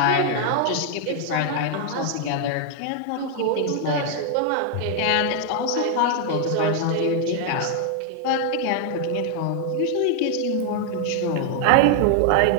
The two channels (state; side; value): different; both; correlation 0.00